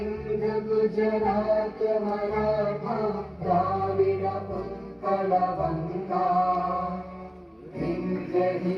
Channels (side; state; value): both; identical; correlation 1.00